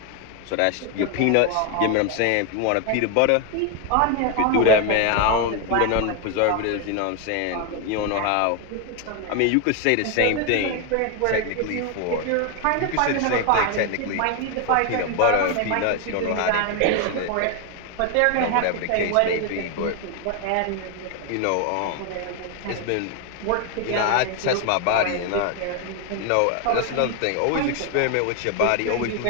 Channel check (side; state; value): both; different; correlation 0.01